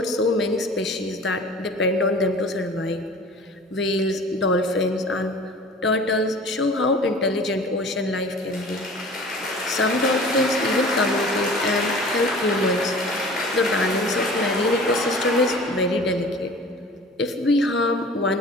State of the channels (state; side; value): normal; both; correlation 0.43